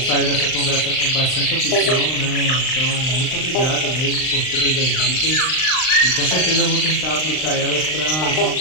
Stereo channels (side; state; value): right; late; 39 ms